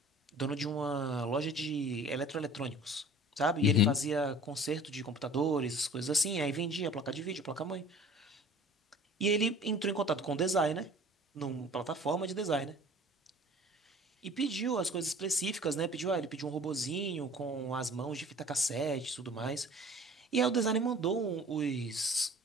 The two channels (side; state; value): both; normal; correlation 0.46